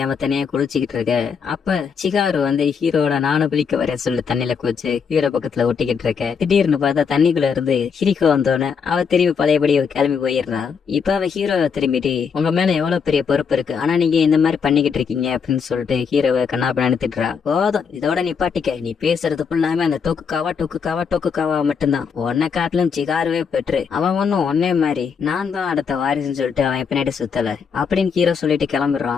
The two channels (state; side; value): quieter; right; 6.3 dB